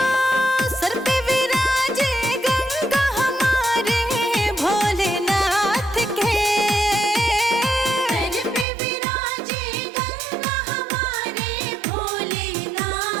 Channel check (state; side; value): drops out; left; at 8.7 s